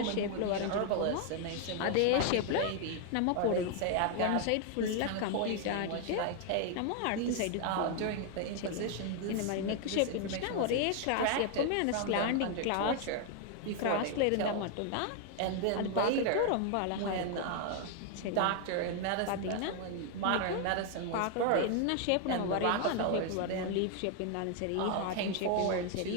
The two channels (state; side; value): different; both; correlation 0.00